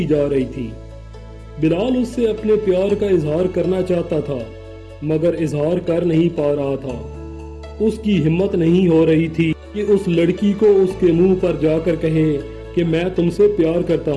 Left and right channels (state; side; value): identical; both; correlation 1.00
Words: جا رہی تھی۔ بلال اس سے اپنے پیار کا اظہار کرنا چاہتا تھا مگر اظہار کر نہیں پا رہا تھا۔ اس کی ہمت نہیں ہو رہی تھی کہ اس لڑکی کو اس کے منہ پر جا کر کہے کہ میں تم سے پیار کرتا